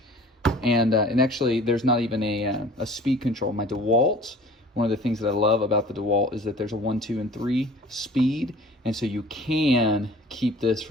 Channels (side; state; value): both; normal; correlation 0.47